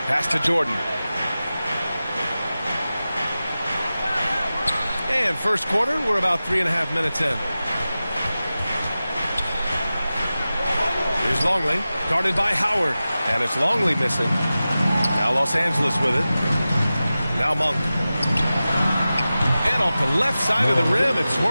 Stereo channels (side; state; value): both; inverted; correlation -0.95